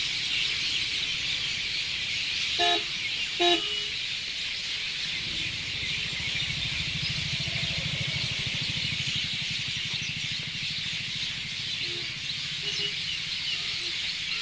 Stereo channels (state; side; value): noise; left; rumble, 19 dB below the sound